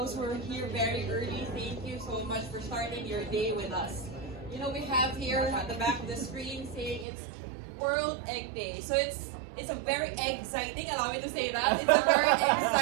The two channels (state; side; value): drops out; left; at 7.1 s